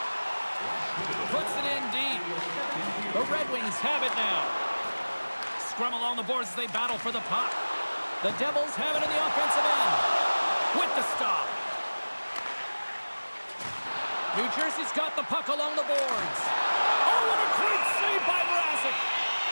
Puts it in deep. The Red Wings have it now. Scrum along the boards as they battle for the puck. The Devils have it in the offensive end. With the stop. New Jersey's got the puck along the boards. Oh, what a great save by Mrazek.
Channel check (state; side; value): inverted; both; correlation -1.00